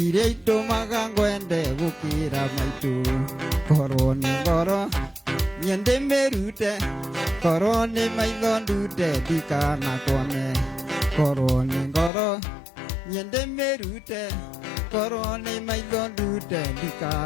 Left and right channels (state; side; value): drops out; right; at 12.1 s